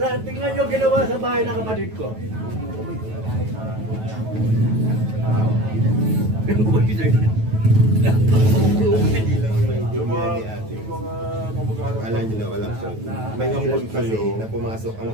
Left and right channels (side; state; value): left; late; 9.2 ms